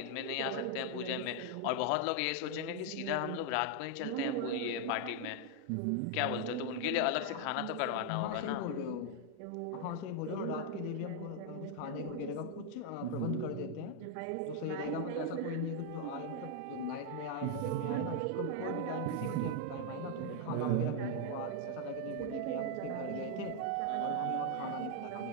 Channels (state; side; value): different; both; correlation 0.00